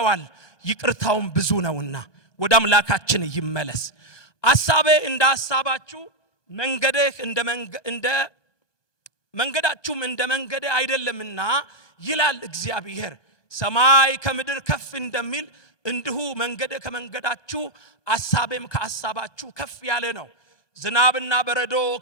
ይቅርታውም ብዙ ነውና። ወደ አምላካችን ይመለስ። አሳቤ እንደ ሐሳባችሁ መንገዳችሁም እንደ መንገዴ አይደለምና ይላል እግዚአብሔር። ሰማይ ከምድር ከፍ እንደሚል እንዲሁ መንገዴ ከመንገዳችሁ አሳቤም ከሐሳባችሁ ከፍ ያለ ነው። ዝናብና በረዶ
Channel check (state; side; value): late; right; 1.9 ms